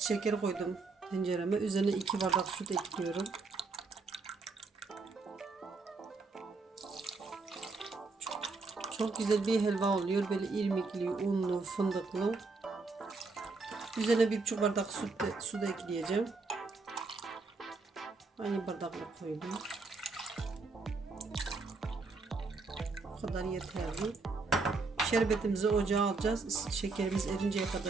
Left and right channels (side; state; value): left; quieter; 4.0 dB